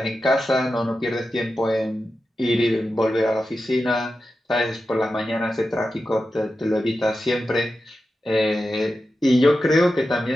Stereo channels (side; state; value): both; normal; correlation 0.91